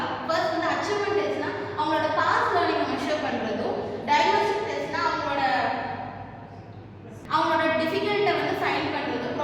ஃபர்ஸ்ட் வந்து அச்சீவ்மெண்ட் டெஸ்ட்னா அவங்களோட பாஸ்ட் லேர்னிங்கை மெஷர் பண்றதும், டயக்னாஸ்டிக் டெஸ்ட்னா அவங்களோட டிஃபிகல்ட்டை வந்து ஃபைண்ட் பண்றது,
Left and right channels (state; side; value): identical; both; correlation 1.00